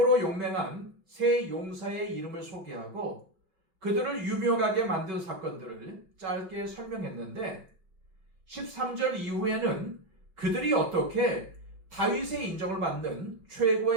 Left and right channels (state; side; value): late; left; 6.1 ms